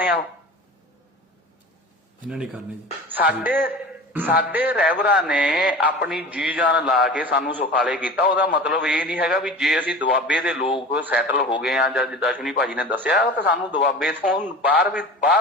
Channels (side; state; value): both; normal; correlation 0.35